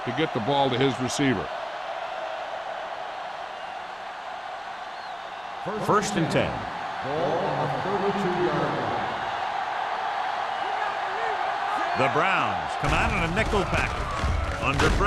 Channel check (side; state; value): both; identical; correlation 1.00